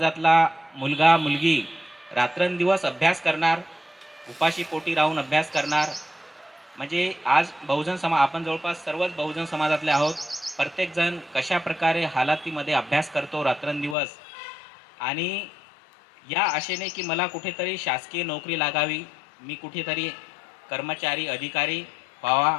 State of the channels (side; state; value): right; drops out; at 14.0 s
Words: मुलगा मुलगी रात्रंदिवस अभ्यास करणार, उपाशी पोटी राहून अभ्यास करणार. म्हणजे आज आपण जवळपास सर्वच बहुजन समाजातले आहोत. प्रत्येकजण कशा प्रकारे हालातीमध्ये अभ्यास करतो रात्रंदिवस, आणि या आशेने की मला कुठेतरी शासकीय नोकरी लागावी, मी कुठेतरी कर्मचारी अधिकारी